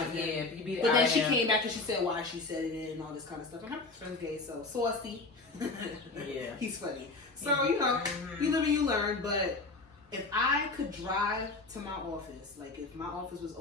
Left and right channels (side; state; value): right; quieter; 3.5 dB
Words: yeah. But then she came back and she said why she said it and all this kind of stuff. And her son's gay, so saucy. Yeah. He's funny. So, you know, you live and you learn, but if I could drive to my office, like if my office was